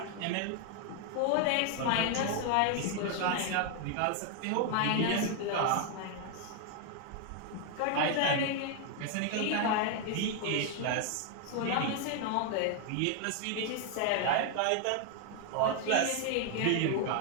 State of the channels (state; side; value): different; both; correlation 0.00